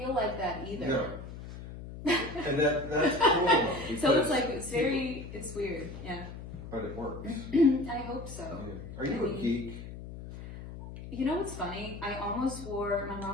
like that either. No. And that's cool. Though, So it's like, it's weird, yeah. But it works. I hope so. Yeah. Are you a geek? You know what's funny? I almost wore, my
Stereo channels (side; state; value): left; noise; hum, 11 dB below the sound